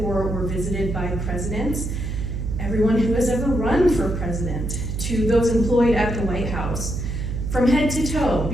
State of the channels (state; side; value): noise; right; hum, 4 dB below the sound